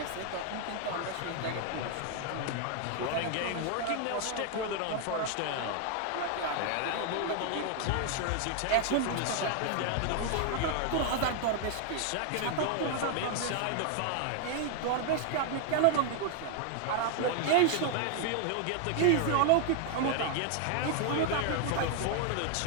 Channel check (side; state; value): both; different; correlation 0.00